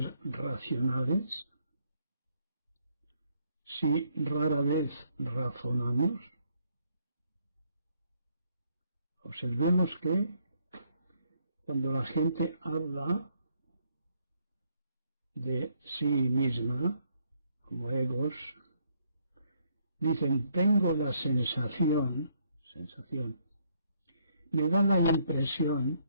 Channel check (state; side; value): inverted; both; correlation -0.71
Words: racionales? Si rara vez razonamos, observemos que cuando la gente habla de sí misma, como egos, dicen: tengo la sensación, me da la impresión,